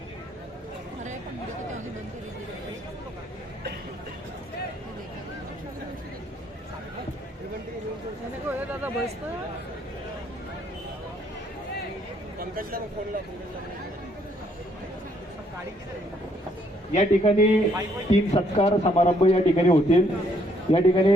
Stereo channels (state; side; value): normal; both; correlation 0.69